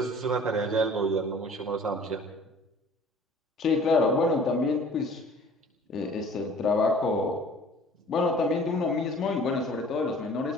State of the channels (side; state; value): both; normal; correlation 0.49